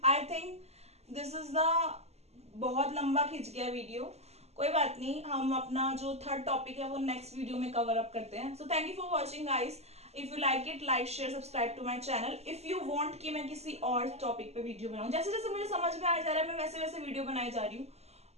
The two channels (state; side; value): late; left; 0.31 ms